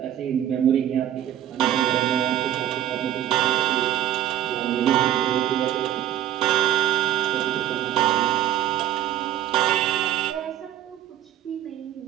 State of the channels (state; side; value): quieter; left; 11.7 dB